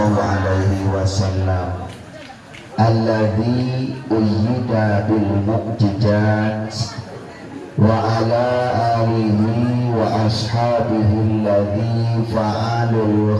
alaihi wasallam alladzi uyyida bil mu'jizat wa ala alihi wa ashabihi alladzi fa'alul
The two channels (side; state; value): both; identical; correlation 1.00